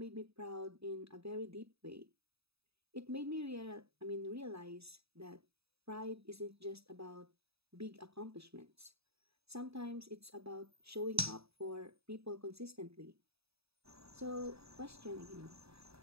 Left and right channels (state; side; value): late; left; 0.78 ms